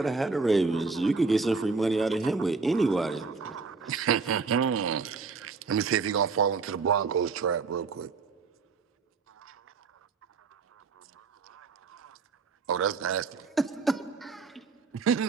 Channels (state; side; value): quieter; left; 4.6 dB